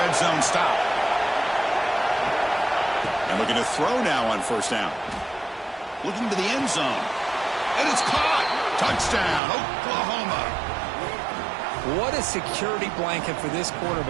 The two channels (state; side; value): drops out; left; at 9.4 s